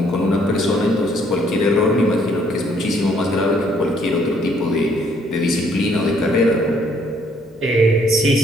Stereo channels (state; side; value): noise; left; hum, 29 dB below the sound